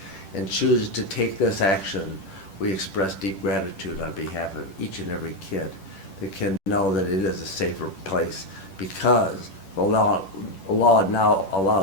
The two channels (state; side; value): late; right; 10 ms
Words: and chooses to take this action, we express deep gratitude on behalf of each and every kid that can know that it is a safer place, because the law now